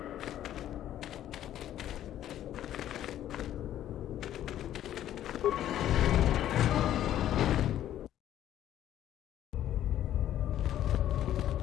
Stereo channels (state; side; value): quieter; right; 11.9 dB